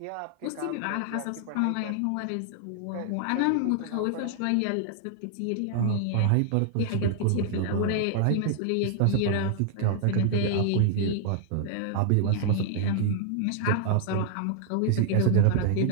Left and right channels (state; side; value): different; both; correlation 0.00